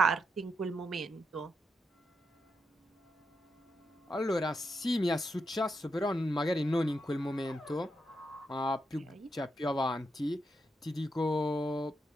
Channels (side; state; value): both; normal; correlation 0.84